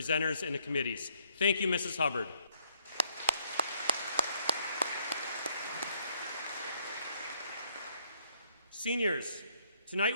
and the committees. Thank you, Mrs. Hubbard. Seniors, tonight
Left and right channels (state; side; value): inverted; both; correlation -0.69